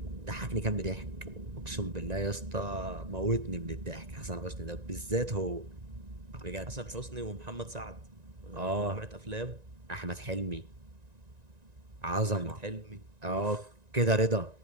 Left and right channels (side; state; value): left; late; 1.9 ms